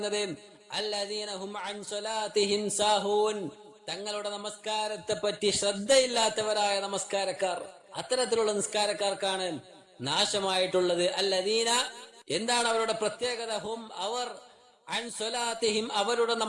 അല്ലദീന ഹും അൻ സ്വലാത്തിഹിം സാഹൂൻ, തങ്ങളുടെ നമസ്കാരത്തെ പറ്റി ശ്രദ്ധയില്ലാത്തവരായ നമസ്കാരക്കാർ. അത്തരത്തിലുള്ള നിസ്കാരക്കാർക്കാണ് നാശമായിട്ടുള്ളത്. അല്ലദീന, എന്താണ് അവരുടെ പ്രത്യേകത? ഹും, അവർ അൻ സ്വലാത്തിഹിം, അവരുടെ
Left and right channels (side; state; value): both; identical; correlation 1.00